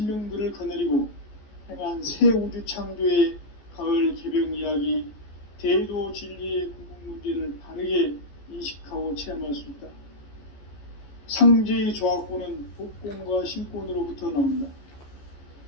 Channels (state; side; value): late; right; 14 ms